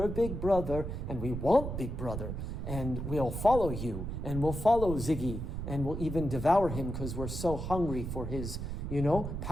and we want big brother, and we'll follow you, and we'll follow Ziggy, and we'll even devour him because we're so hungry for his,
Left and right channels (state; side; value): noise; right; rumble, 5 dB below the sound